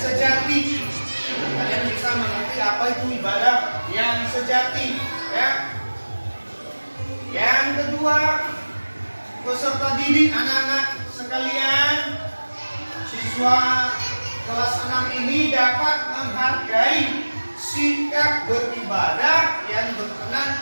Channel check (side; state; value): both; inverted; correlation -1.00